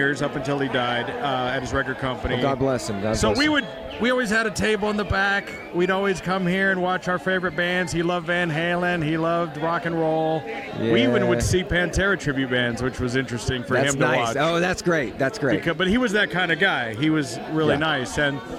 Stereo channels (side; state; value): both; identical; correlation 1.00